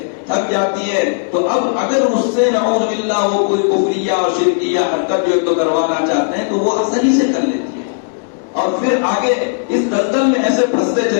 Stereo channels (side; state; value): right; silent; digital silence